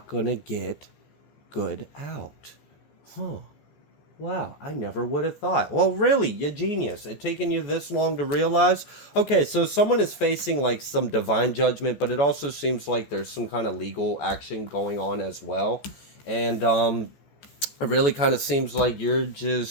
going to get good out. Wow, I never would have thought. Well, really, you genius. It taken you this long to realize? Okay, so someone is facing like some divine judgment, but it also seems like there's some kind of legal action going on as well. And it really kind of seems like you're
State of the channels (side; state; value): right; late; 14 ms